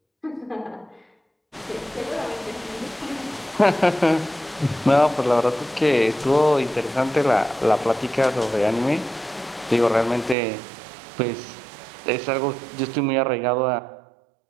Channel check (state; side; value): drops out; left; at 10.4 s